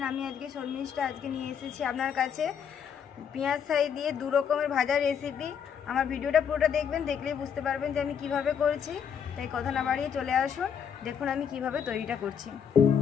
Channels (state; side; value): quieter; right; 7.7 dB